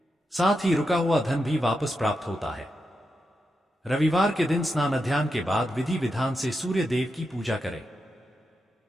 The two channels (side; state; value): both; normal; correlation 0.86